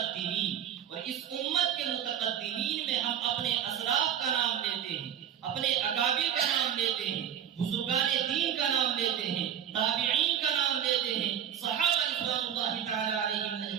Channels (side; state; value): left; quieter; 9.4 dB